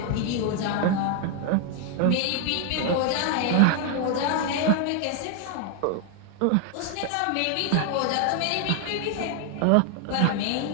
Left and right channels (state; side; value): different; both; correlation 0.00